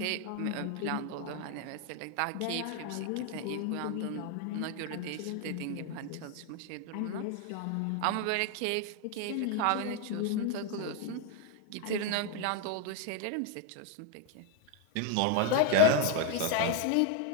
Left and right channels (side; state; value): both; different; correlation 0.01